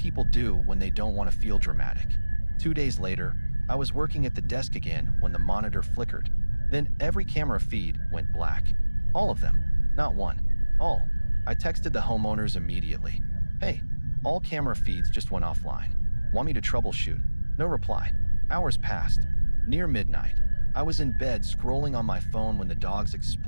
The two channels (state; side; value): inverted; both; correlation -1.00